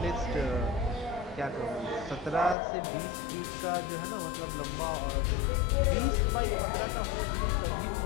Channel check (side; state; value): right; drops out; at 2.6 s